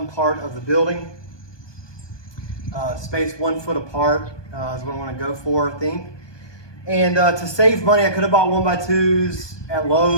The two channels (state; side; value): late; right; 1.2 ms